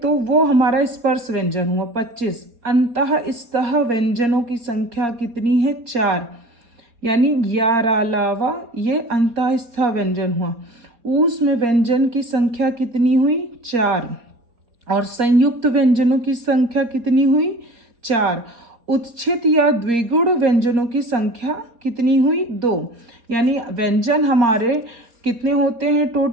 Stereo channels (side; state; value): left; late; 4.3 ms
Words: वो हमारा स्पर्श व्यंजन हुआ 25। अंतः स्तः व्यंजनों की संख्या कितनी है? 4। यानी ग्यारह लावा, ये अंतः स्तः व्यंजन हुआ। ऊष्म में व्यंजन की संख्या कितनी हुई? 4। और संयुक्त व्यंजनों की संख्या कितनी हुई? 4। उत्क्षित या द्विगुण व्यंजनों की संख्या कितनी हुई 2, यानी व्यंजन हमारे कितने होते हैं